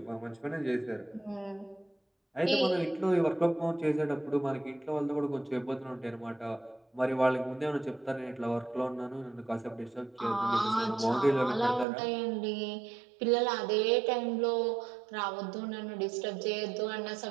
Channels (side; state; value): left; drops out; at 11.9 s